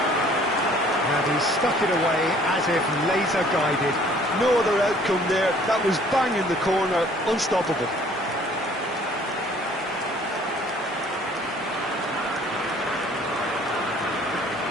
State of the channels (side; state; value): both; normal; correlation 0.56